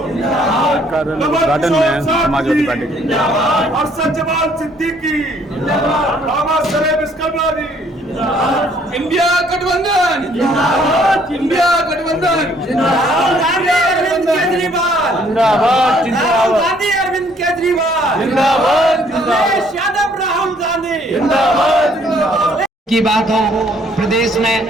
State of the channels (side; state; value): both; normal; correlation 0.63